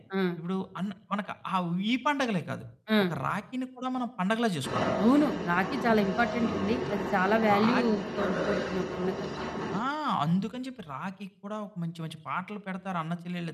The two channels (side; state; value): both; identical; correlation 1.00